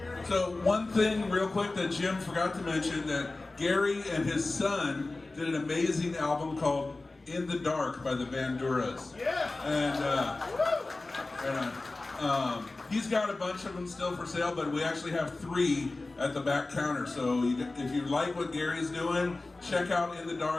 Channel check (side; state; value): right; quieter; 3.2 dB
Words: So one thing real quick that Jim forgot to mention, that Gary and his son did an amazing album called In the Dark by the Banduras. Yeah. And he's got a bunch of them still for sale, but we actually have 3 at the back counter. So if you like what Gary's doing, check out In the